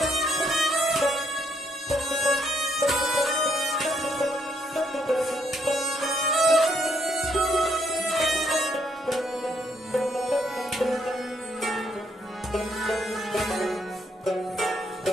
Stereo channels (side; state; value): both; normal; correlation 0.72